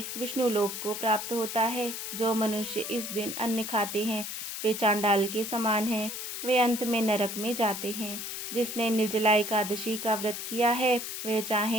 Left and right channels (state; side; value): noise; left; hiss, 6 dB below the sound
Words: विष्णु लोक को प्राप्त होता है। जो मनुष्य इस दिन अन्न खाते हैं वे चांडाल के समान हैं, वे अंत में नरक में जाते हैं। जिसने निर्जला एकादशी का व्रत किया है वह